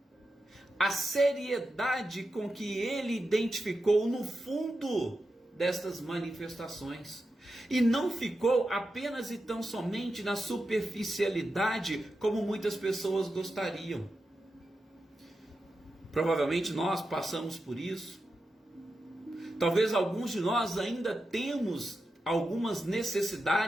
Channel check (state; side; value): normal; both; correlation 0.89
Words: a seriedade com que ele identificou no fundo destas manifestações. E não ficou apenas e tão somente na superficialidade como muitas pessoas gostariam. Provavelmente nós passamos por isso. Talvez alguns de nós ainda temos algumas